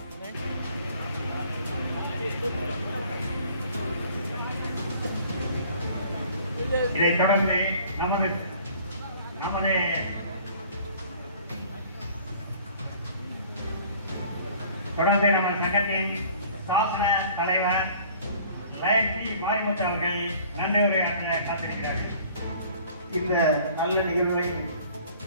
இதைத் தொடர்ந்து நமது நம்ம சங்கத்தின் சாசன தலைவர் லைன் பி மாரிமுத்து அவர்கள் நன்றி உரையாற்ற காத்திருக்கிறார்கள். இந்த நல்ல நிகழ்வை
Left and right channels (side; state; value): both; inverted; correlation -0.52